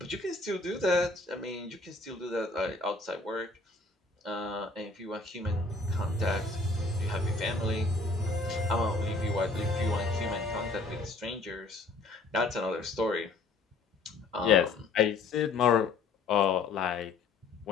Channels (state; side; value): quieter; right; 3.7 dB